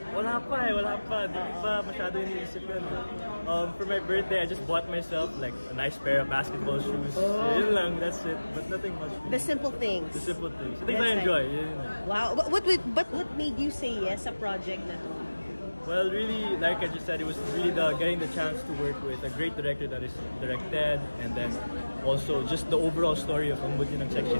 Wala pa. Di pa masyado iniisip yun. For my birthday, I just bought myself like a nice pair of basketball shoes. Yun lang, that's it. But nothing much. The simple things. The simple things. Things I enjoy. Wow. But what made you say yes sa project na to? Well, really, like I just said, it was really getting the chance to work with a great director that is directed, and then also just the overall story of Ang Buti ng Section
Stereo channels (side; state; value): both; inverted; correlation -1.00